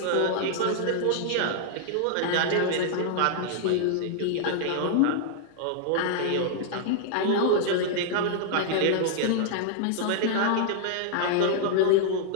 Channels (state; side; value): different; both; correlation -0.01